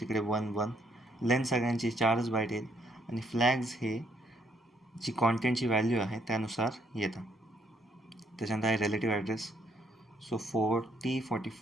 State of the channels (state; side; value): normal; both; correlation 0.69